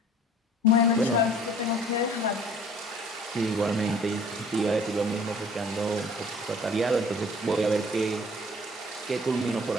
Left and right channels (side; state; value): both; normal; correlation 0.51